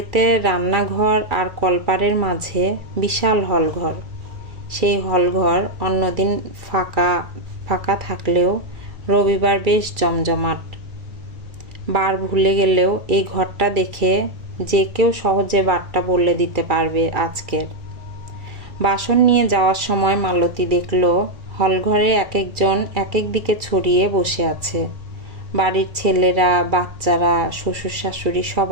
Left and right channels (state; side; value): late; left; 2.3 ms